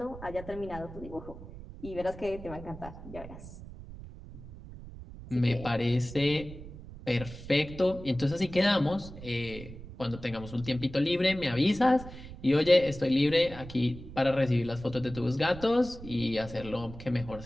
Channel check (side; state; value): right; noise; rumble, 14 dB below the sound